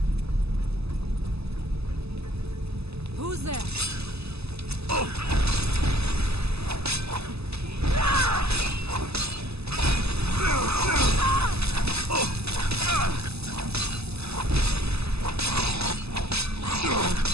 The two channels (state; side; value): late; left; 0.79 ms